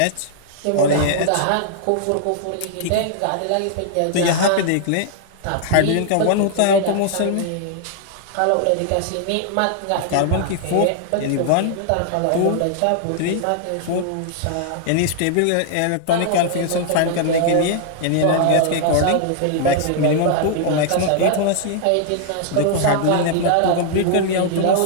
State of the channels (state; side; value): different; both; correlation 0.00